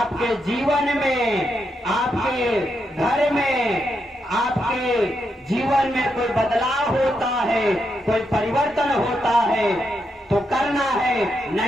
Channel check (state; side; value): normal; both; correlation 0.82